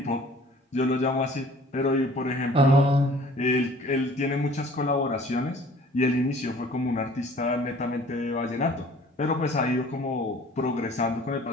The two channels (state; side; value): normal; both; correlation 0.51